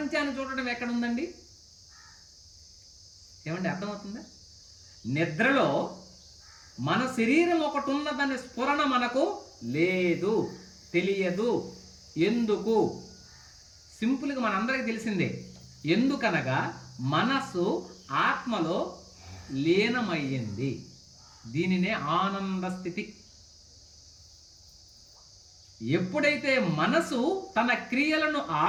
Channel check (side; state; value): both; identical; correlation 1.00